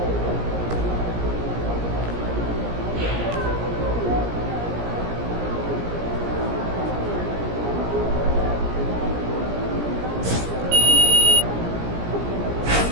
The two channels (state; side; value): late; left; 17 ms